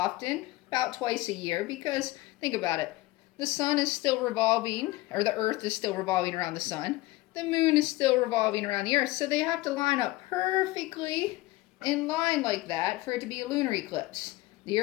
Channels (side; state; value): right; quieter; 19.2 dB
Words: about twice a year, because think about it. The sun is still revolving, or the earth is still revolving around the sun. The moon is still revolving around the earth, so they have to line up perfectly in line like that for it to be a lunar eclipse. The